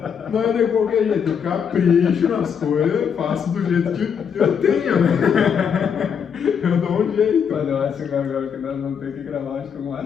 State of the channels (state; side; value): quieter; right; 7.2 dB